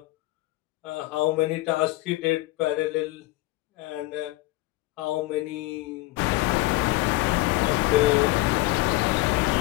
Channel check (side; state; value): right; quieter; 19.4 dB